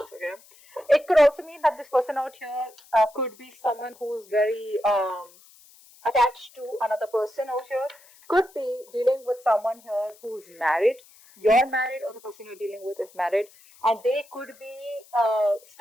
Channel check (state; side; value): noise; left; hiss, 26 dB below the sound